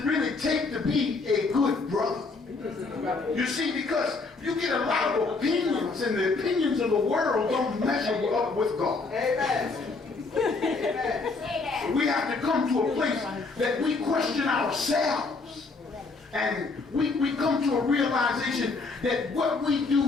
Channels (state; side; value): quieter; right; 3.9 dB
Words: really take to be a good brother? You see, because you get a lot of opinions, and the opinions of the world don't measure up with God. Amen. Amen. We have to come to a place that we question ourselves. And we come to a realization that what we